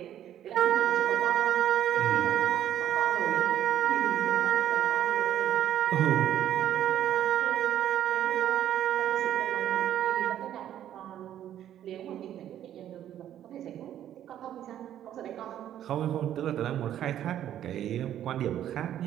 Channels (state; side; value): quieter; left; 11.2 dB